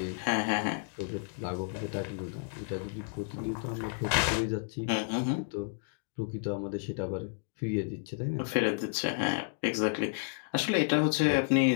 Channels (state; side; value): silent; right; digital silence